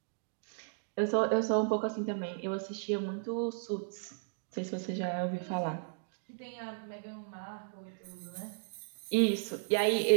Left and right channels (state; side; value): silent; left; digital silence